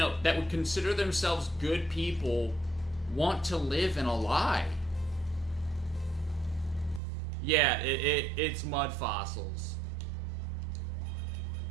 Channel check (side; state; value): left; drops out; at 7.0 s